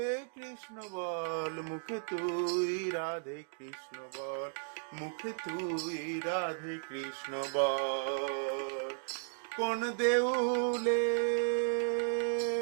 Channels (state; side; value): silent; left; digital silence